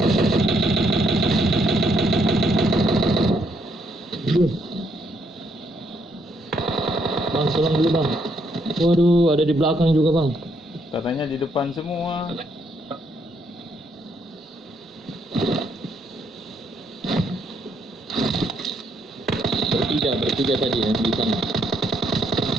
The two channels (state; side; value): normal; both; correlation 0.73